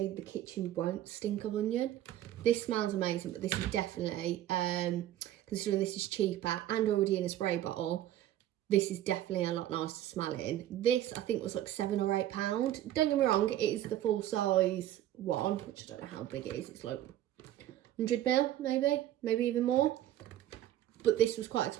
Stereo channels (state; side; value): quieter; left; 12.7 dB